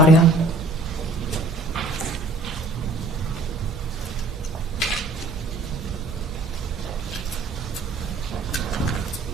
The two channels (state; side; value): normal; both; correlation 0.54